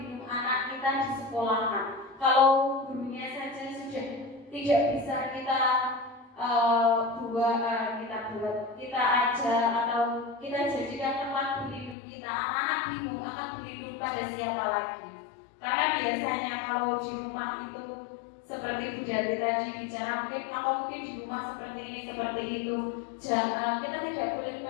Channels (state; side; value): drops out; right; at 12.0 s